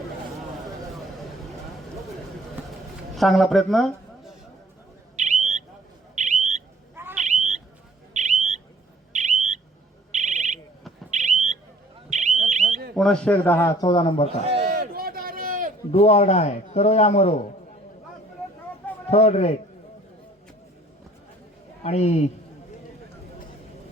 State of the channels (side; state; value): both; normal; correlation 0.54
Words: चांगला प्रयत्न. पुनश्च एकदा हा 14 नंबरचा डू ऑर डाय, करो या मरो, 3rd रेट. आणि